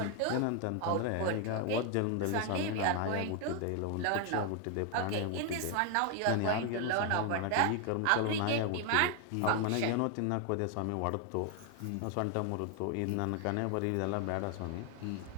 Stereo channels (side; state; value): both; different; correlation 0.01